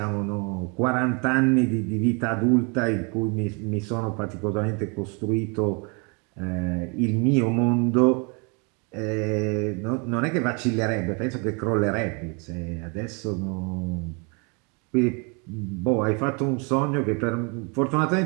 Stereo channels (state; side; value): quieter; left; 33.1 dB